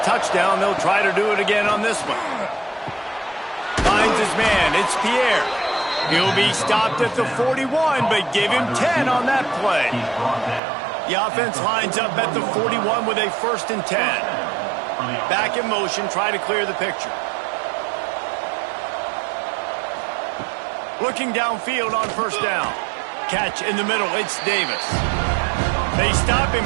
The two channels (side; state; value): left; drops out; at 10.6 s